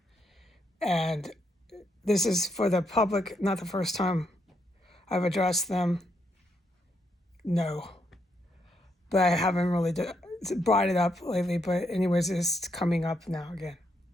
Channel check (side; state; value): both; normal; correlation 0.77